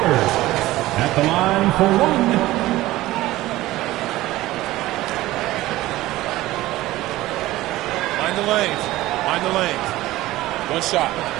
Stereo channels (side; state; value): left; quieter; 16.9 dB